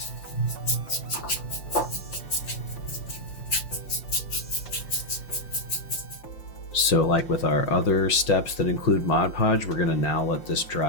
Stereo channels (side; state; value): right; late; 5.7 ms